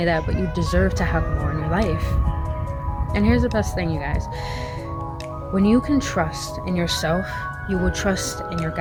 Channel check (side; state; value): both; identical; correlation 1.00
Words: that, but you deserve to have more in your life. And here's the best thing, you guys. When you can trust in yourself, you will trust in your